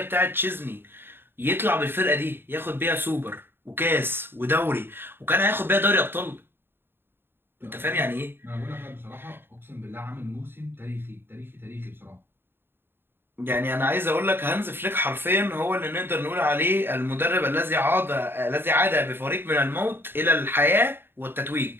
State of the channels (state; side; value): late; left; 0.10 ms